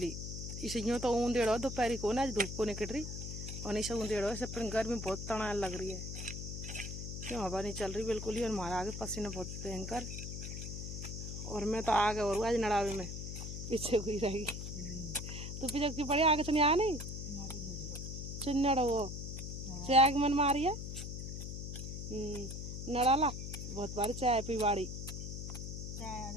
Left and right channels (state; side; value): noise; left; hum, 6 dB below the sound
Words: ही, इसे यूँ तो ऊंधेड़ो दोपहर को ना, आज धूप को निकल रही और इसे ऊंधेड़ो ऐसे, पर गर्मी बहुत तनाव लग रही है, क्यों हवा नहीं चल रही बिल्कुल ही। और हमारा आगे पसीना बहुत भयंकर, और मैं तो आगे और आज नड़ावे में पीछे हुई रहेगी। तो पीछे की पड़ी आगे से नहीं आ नहीं चिन्नड़ वो चाय की मन मारी है नड़ाला बहुत बारी चाय पी बाड़ी,